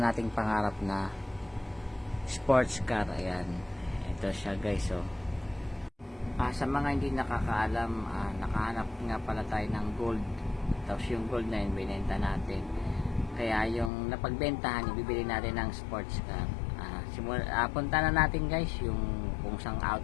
nating pangarap na sports car. Ayan, ito siya guys. Oh. Sa mga hindi nakakaalam, nakahanap nga pala tayo ng gold. Tapos yung gold na yun, binenta natin. Kaya yung napagbentahan, ibibili natin ng sports car. Punta na natin guys yung kung sang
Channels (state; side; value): drops out; right; at 13.9 s